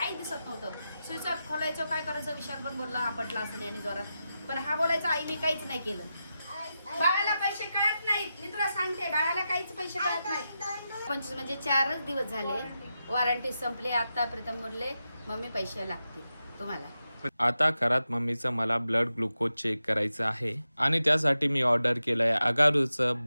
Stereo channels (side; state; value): both; inverted; correlation -0.90